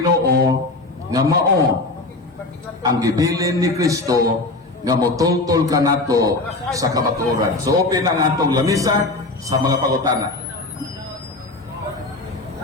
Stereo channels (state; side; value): quieter; right; 3.1 dB